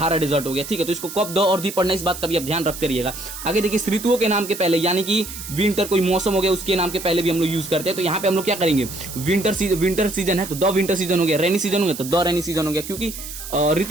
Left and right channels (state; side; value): noise; right; hiss, 10 dB below the sound